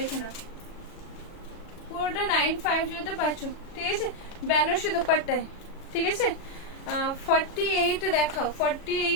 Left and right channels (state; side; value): late; right; 37 ms